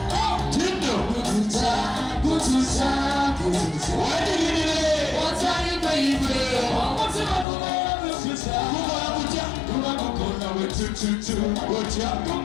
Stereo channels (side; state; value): right; drops out; at 7.5 s